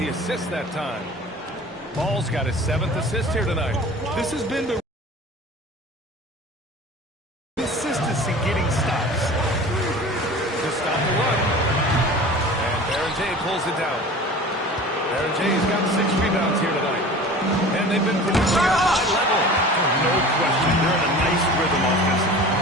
assist that time. Ball's got his 7th assist here tonight. This has been the consistency getting stops. To stop the run. And Berger pulls it down. Berger's got 6 rebounds here tonight. And they've been producing at a high level. No question. They're in a nice rhythm offensively.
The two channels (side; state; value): both; normal; correlation 0.40